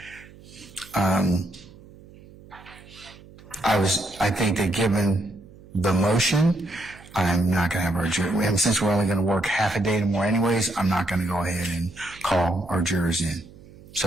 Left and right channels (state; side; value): noise; right; hum, 21 dB below the sound